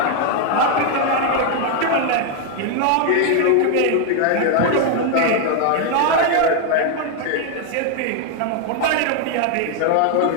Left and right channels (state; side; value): different; both; correlation 0.00